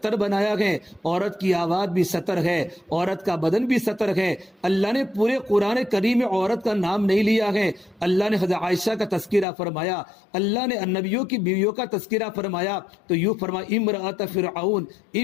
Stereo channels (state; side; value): drops out; right; at 9.5 s